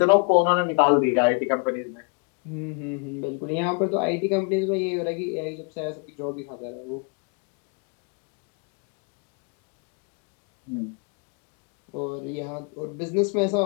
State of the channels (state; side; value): quieter; right; 35.8 dB